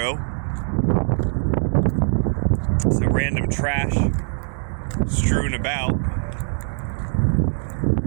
Some random trash strewn about.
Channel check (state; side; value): silent; left; 64 dB below the other